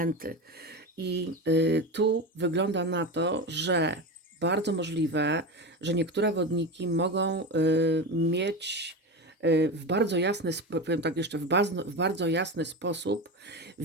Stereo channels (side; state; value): both; normal; correlation 0.22